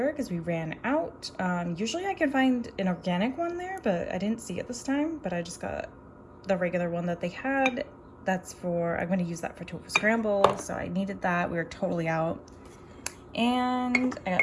because we ran out. Usually I can find an organic one there, but I didn't see it this time. But I just got the regular one that they had. That's for, I'm going to use that for tofu scramble, so I needed that. We were totally out. And I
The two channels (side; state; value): both; identical; correlation 1.00